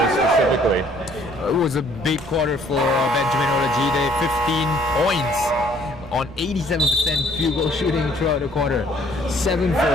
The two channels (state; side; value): noise; right; rumble, 17 dB below the sound